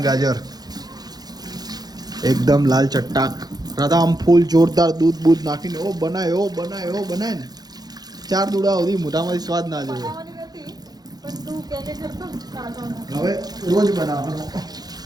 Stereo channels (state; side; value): late; left; 0.19 ms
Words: ગાજર, એકદમ લાલ ચટ્ટાક. રાધા આમ ફૂલ જોરદાર દૂધ બૂધ નાખીને એવો બનાય ને 4 દૂડા સુધી મોઢામાંથી સ્વાદ ના જોયો. હવે રોજ બનાવવાનો